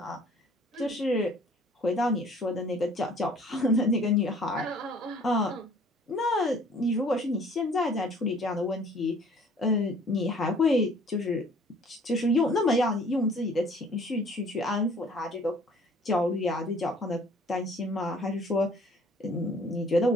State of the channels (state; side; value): normal; both; correlation 0.54